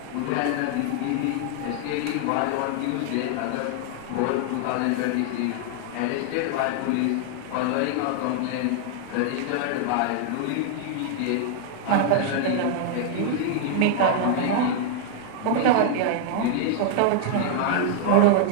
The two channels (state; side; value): different; both; correlation 0.00